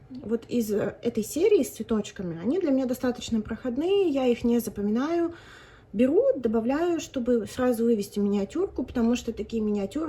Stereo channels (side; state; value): both; identical; correlation 1.00